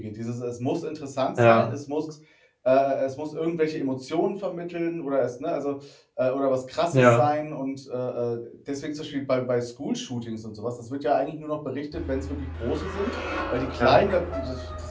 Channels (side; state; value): both; identical; correlation 1.00